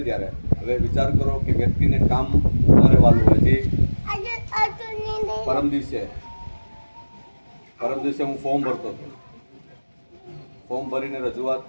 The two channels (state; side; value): inverted; both; correlation -1.00